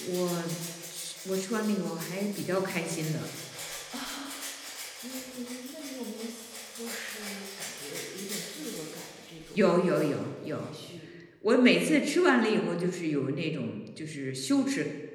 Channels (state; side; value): identical; both; correlation 1.00